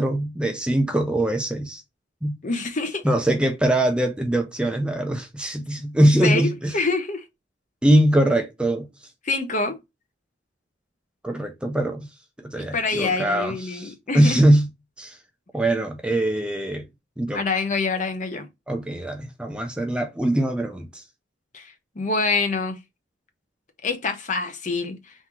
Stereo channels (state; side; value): normal; both; correlation 0.76